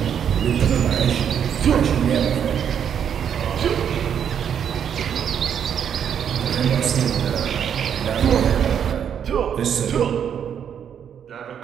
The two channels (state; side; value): quieter; left; 8.4 dB